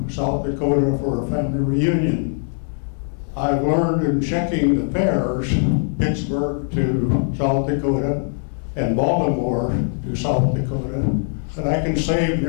South Dakota for a family reunion. I've learned in checking the fares, Pittsburgh to South Dakota and Baltimore to South Dakota, that I can save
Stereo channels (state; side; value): silent; right; 58 dB below the other